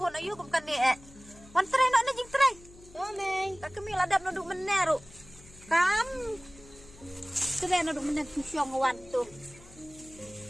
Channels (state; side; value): noise; left; hum, 22 dB below the sound